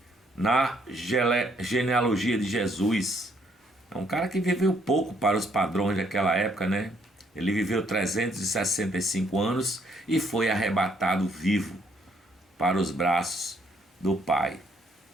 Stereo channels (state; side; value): normal; both; correlation 0.69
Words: na genealogia de Jesus. É um cara que viveu pouco para os padrões daquela época, né? Ele viveu 365 anos e foi arrebatado vivo para os braços do Pai.